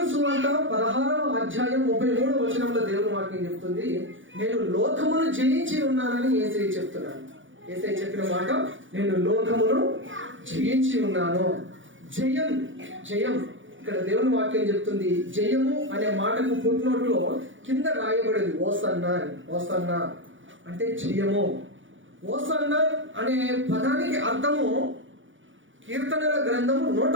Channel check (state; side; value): late; left; 0.56 ms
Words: సువార్త 16వ అధ్యాయం 33వ వచనంలో దేవుడు వాక్యం చెప్తుంది, నేను లోకమును జయించి ఉన్నానని యేసయ్య చెప్తున్నాను. యేసయ్య చెప్పిన మాట, నేను లోకమును జయించి ఉన్నాను. జయం జయం ఇక్కడ దేవుని వాక్యం చెప్తుంది. జయము అనే మాటకు ఫుట్నోట్లో కింద రాయబడింది ఓసన్నా అని. ఓసన్నా అంటే జయము. ఓసన్నా అనే పదానికి అర్థము కీర్తనల గ్రంథము